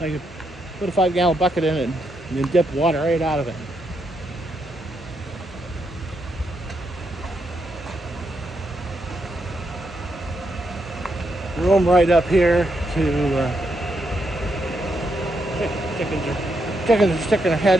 could put a 5-gallon bucket in it and then dip water right out of it. Room right up here to chickens are sticking their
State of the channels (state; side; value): normal; both; correlation 0.80